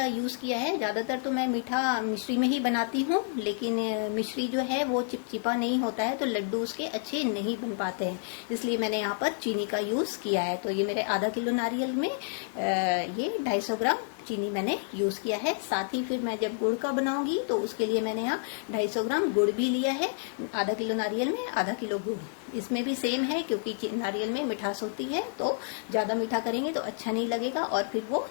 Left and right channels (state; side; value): silent; right; digital silence